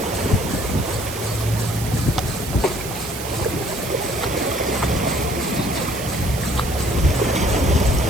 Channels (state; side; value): noise; right; hiss, 9 dB below the sound